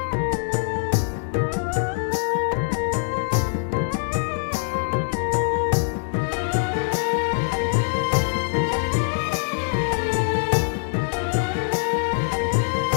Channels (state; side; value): silent; right; 62 dB below the other